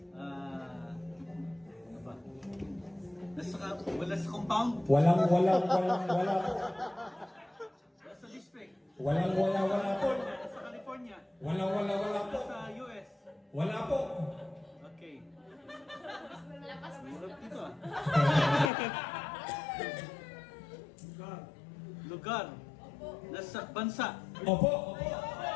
Ano ba? Wala sa compound. Wala po. Wala sa district. Wala po. Wala sa California. Wala Wala po. sa US. Wala po. Okay. Hirap dito ah. Lugar. Nasa bansa. Opo.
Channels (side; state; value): right; drops out; at 18.7 s